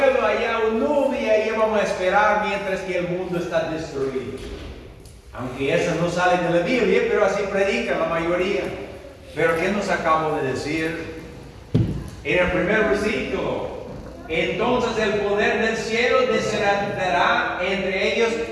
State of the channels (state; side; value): identical; both; correlation 1.00